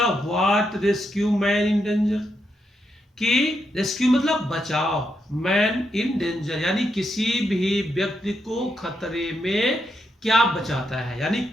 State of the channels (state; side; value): normal; both; correlation 0.82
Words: what rescue man in danger, कि रेस्क्यू मतलब बचाओ, मैन इन डेंजर यानी किसी भी व्यक्ति को खतरे में क्या बचाता है, यानी